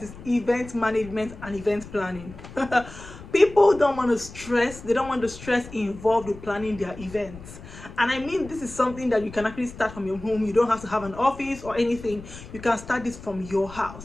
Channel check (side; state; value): left; noise; rumble, 15 dB below the sound